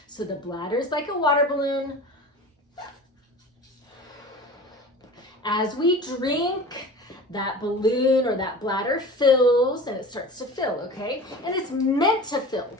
So the bladder's like a water balloon. As we drink, that balloon or that bladder fills and it starts to fill, okay? And it's meant to fill.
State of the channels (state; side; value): normal; both; correlation 0.37